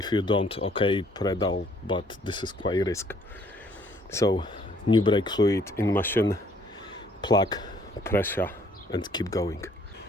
you don't, okay, pedal, but this is quite risk. So new brake fluid in machine, plug, pressure and keep going.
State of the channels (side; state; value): both; normal; correlation 0.63